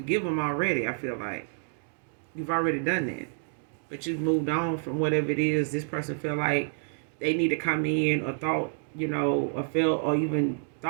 them already, I feel like. You've already done that. But you've moved on from whatever it is this person feel like they need to come in, or thought, or felt, or even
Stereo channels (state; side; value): silent; left; digital silence